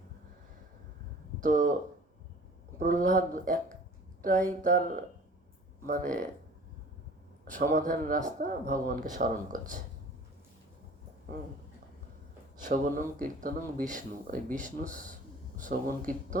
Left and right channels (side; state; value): both; normal; correlation 0.46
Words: তো প্রহ্লাদ একটাই তার মানে সমাধান রাস্তা, ভগবানকে স্মরণ করছে। শ্রবণং কীর্তনং বিষ্ণু, ওই বিষ্ণু শ্রবণ